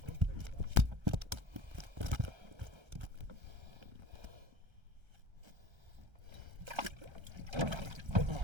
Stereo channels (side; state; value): left; late; 1.3 ms